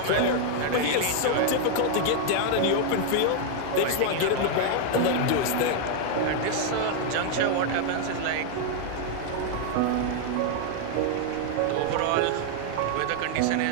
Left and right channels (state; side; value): different; both; correlation 0.00